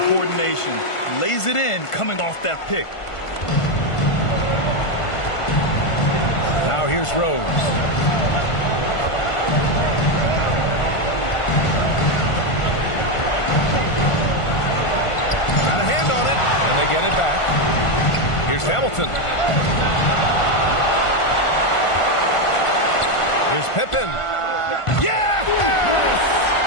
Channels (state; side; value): late; right; 1.5 ms